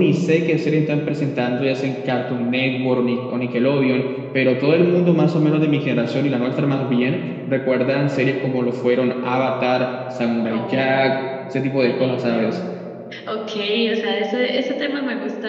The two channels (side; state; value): both; identical; correlation 1.00